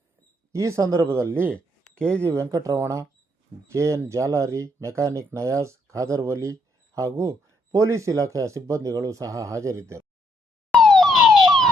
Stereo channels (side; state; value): both; normal; correlation 0.72